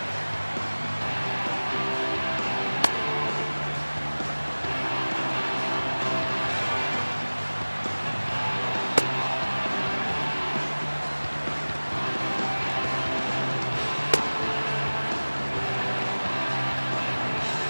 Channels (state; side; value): inverted; both; correlation -1.00